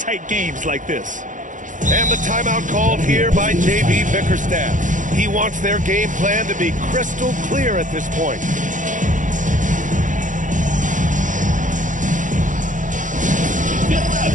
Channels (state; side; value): late; left; 0.37 ms